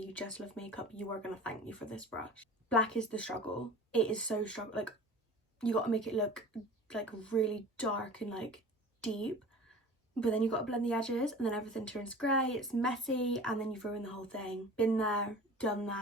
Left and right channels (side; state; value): both; normal; correlation 0.40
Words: just love makeup, you are going to thank me for this brush. Black is the struggle. It is so struggle. Like, you got to make it look like really dark and like deep, but then you got to blend the edges, and then everything turns grey. It's messy, and then you've ruined the whole thing. Been there, done